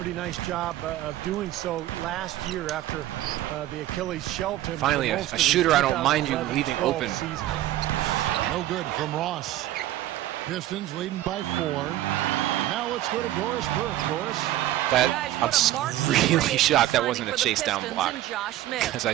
nice job of doing so last year after the Achilles shelved him. Finally, a shooter I don't mind you leaving open. Season. No good from Ross. Pistons leading by 4. Now let's go to Doris Burke. Doris. I'm really shocked that wasn't a chase down block, because I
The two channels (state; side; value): quieter; left; 14.2 dB